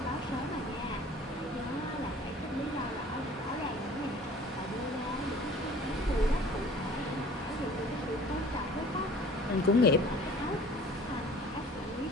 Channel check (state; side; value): normal; both; correlation 0.48